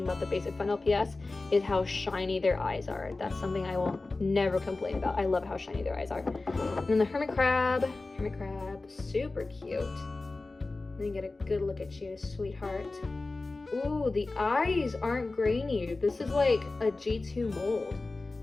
about the Basic Fun LPS is how shiny their eyes are. That's something I will never complain about. I love how shiny their eyes are. And then the hermit crab, super cute. Let me get a good look at you, sweetheart. Ooh, the eyes aren't grainy. This is like a G2 mold.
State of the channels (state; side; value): quieter; right; 3.4 dB